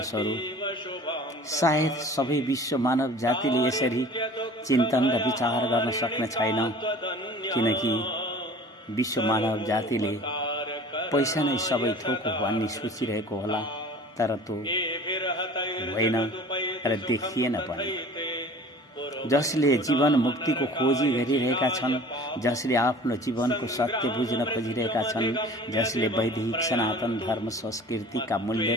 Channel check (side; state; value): both; normal; correlation 0.44